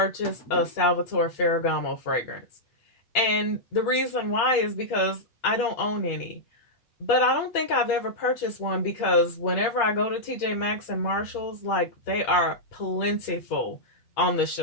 a Salvatore Ferragamo fragrance. And the reason why is because I don't own any. But I don't think I've ever purchased one because whenever I go to TJ Maxx and Marshall's, like they are plentiful on the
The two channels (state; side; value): late; right; 8.6 ms